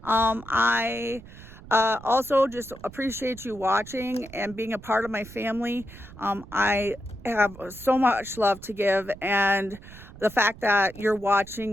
I also just appreciate you watching and being a part of my family. I have so much love to give, and the fact that you're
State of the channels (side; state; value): right; noise; rumble, 18 dB below the sound